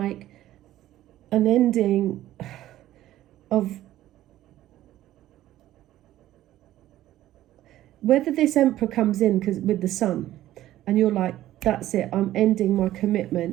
an ending of, whether this Emperor comes in with the sun, and you're like, that's it, I'm ending my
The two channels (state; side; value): quieter; left; 14.0 dB